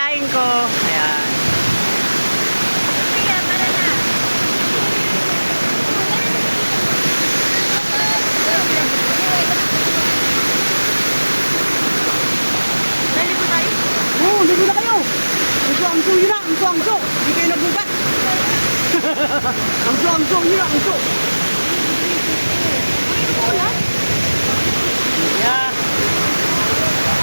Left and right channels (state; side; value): inverted; both; correlation -1.00